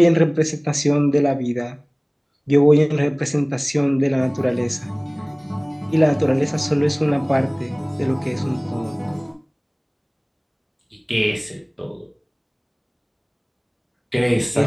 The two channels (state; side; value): identical; both; correlation 1.00